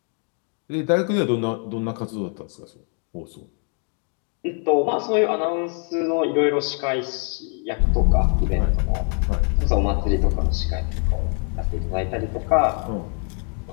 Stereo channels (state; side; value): quieter; right; 39.2 dB